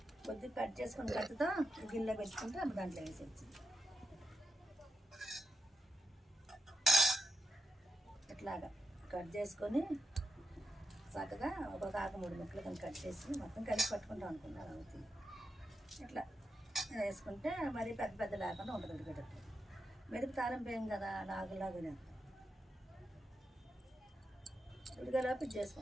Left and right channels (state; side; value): normal; both; correlation 0.87